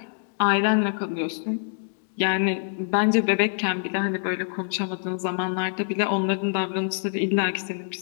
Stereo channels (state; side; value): silent; right; digital silence